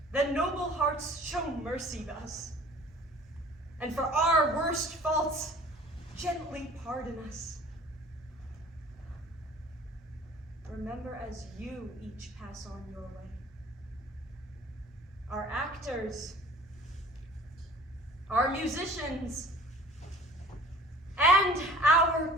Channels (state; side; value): normal; both; correlation 0.47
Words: Then noble hearts show mercy to us, and for our worst faults, gently pardon us. Remember as you each pass on your way. Our actors, our musicians, and our